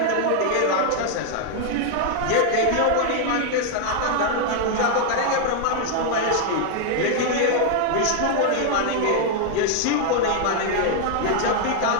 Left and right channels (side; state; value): both; different; correlation 0.00